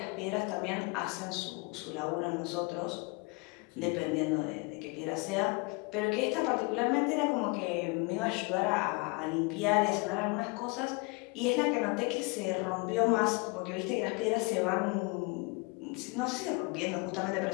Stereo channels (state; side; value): quieter; right; 28.8 dB